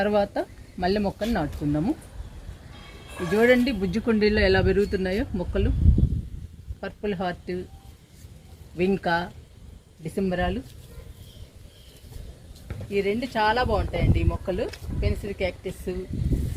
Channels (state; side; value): identical; both; correlation 1.00